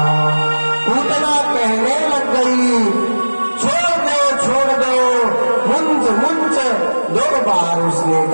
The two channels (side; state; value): both; inverted; correlation -1.00